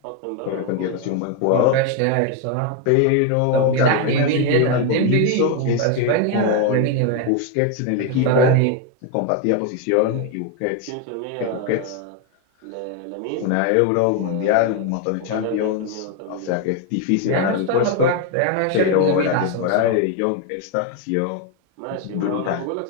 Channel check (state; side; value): different; both; correlation 0.01